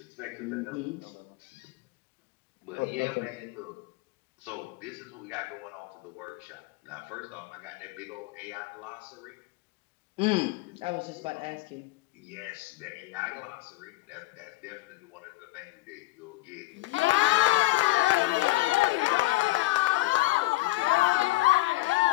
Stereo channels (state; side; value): quieter; right; 19.4 dB